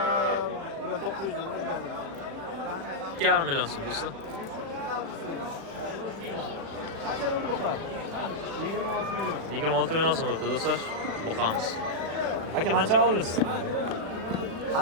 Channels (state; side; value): late; left; 36 ms